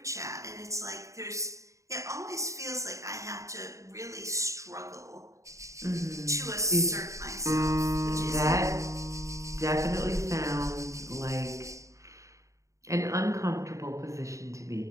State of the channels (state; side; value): late; left; 0.15 ms